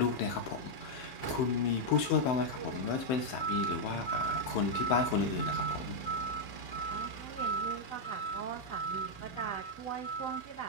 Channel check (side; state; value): right; late; 16 ms